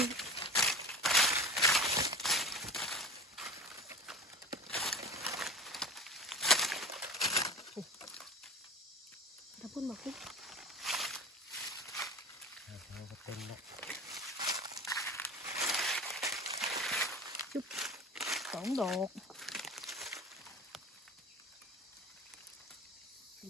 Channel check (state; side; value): normal; both; correlation 0.35